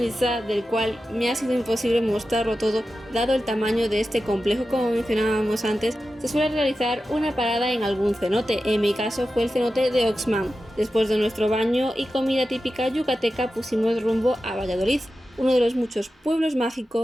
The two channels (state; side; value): normal; both; correlation 0.92